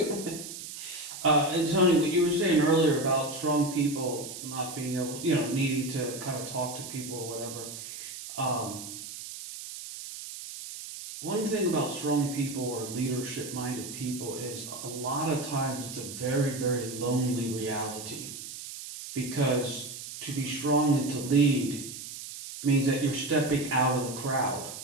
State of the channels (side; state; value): right; noise; hiss, 10 dB below the sound